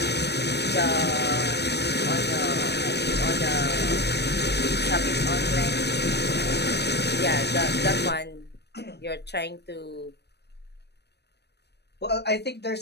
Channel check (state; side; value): late; right; 0.49 ms